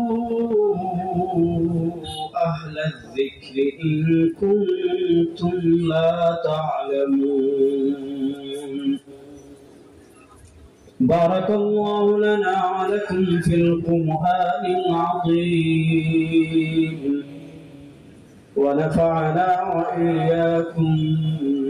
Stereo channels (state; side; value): identical; both; correlation 1.00